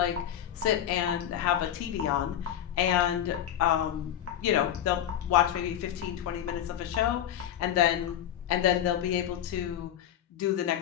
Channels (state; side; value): quieter; right; 10.7 dB